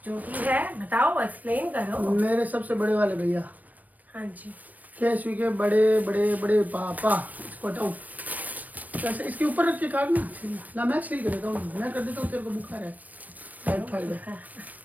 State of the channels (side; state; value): left; late; 0.079 ms